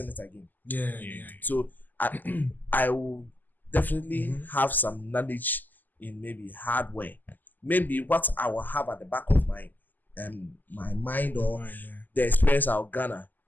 it again. Yeah. So I will definitely have some knowledge in maybe hardware. Maybe what I will have at the back of my my mind or the experience I'll garner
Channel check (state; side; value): late; right; 0.086 ms